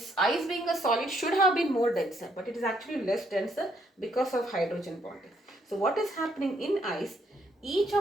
ice being a solid should have been more denser, but it is actually less denser because of hydrogen bonding. So what is happening in ice? Each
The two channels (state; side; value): normal; both; correlation 0.71